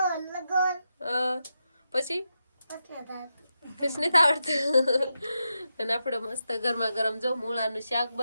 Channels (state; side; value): inverted; both; correlation -0.87